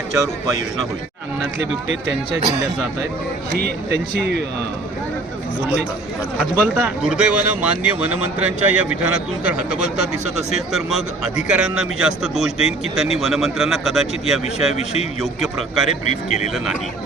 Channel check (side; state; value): left; quieter; 3.0 dB